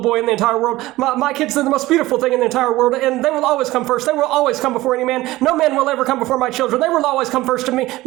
boy in the entire world. My kids are the most beautiful thing in the entire world, and they will always come first. They will always come before any man. No man will ever come before my children. They will always come first to me. Blah,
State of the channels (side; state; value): left; quieter; 17.8 dB